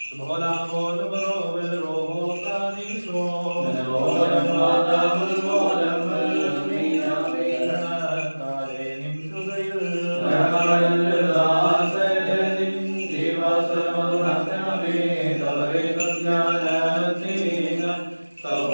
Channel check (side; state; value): both; inverted; correlation -1.00